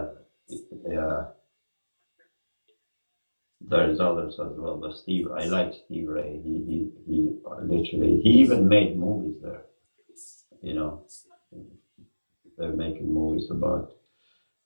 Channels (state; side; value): inverted; both; correlation -1.00